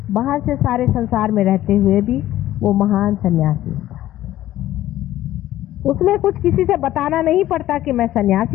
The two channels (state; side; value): quieter; right; 14.0 dB